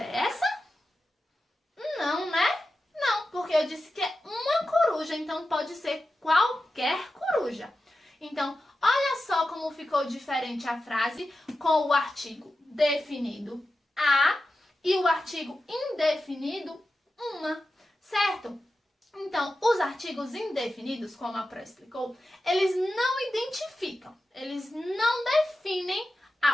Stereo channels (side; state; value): both; normal; correlation 0.92